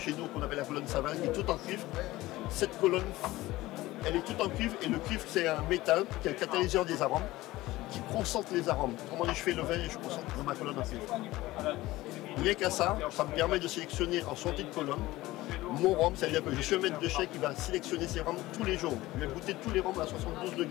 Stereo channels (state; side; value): quieter; right; 17.9 dB